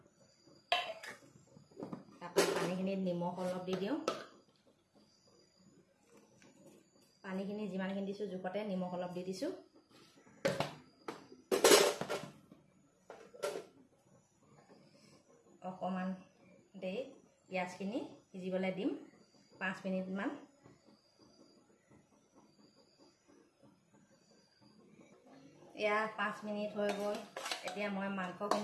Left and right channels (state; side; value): identical; both; correlation 1.00